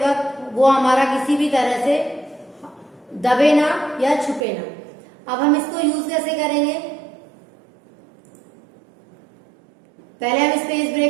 वक्त वो हमारा किसी भी तरह से दबे ना या छुपे ना। अब हम इसको यूज कैसे करेंगे, पहले हम इस पेज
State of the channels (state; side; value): drops out; left; at 4.4 s